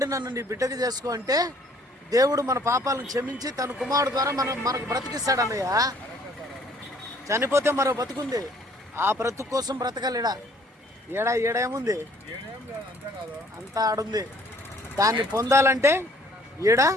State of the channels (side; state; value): both; normal; correlation 0.59